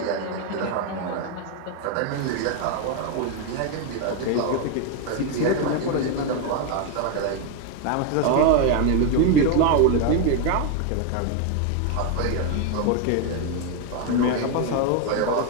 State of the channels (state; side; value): different; both; correlation 0.01